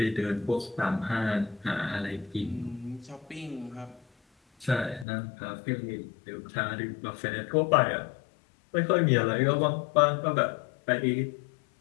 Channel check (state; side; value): drops out; right; at 5.1 s